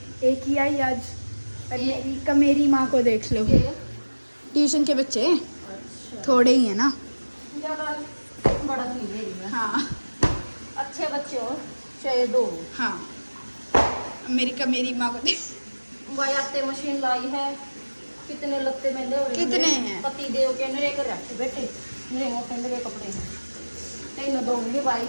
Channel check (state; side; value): inverted; both; correlation -1.00